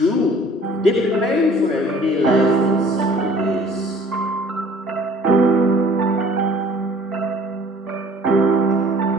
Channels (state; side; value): normal; both; correlation 0.53